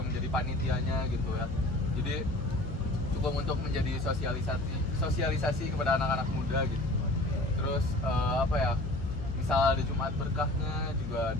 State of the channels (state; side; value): noise; left; hum, 8 dB below the sound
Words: menjadi panitianya gitu ya. Jadi cukup untuk menjadi sosialisasi kepada anak-anak muda gitu. Terus apa ya? Misal ada Jumat berkahnya juga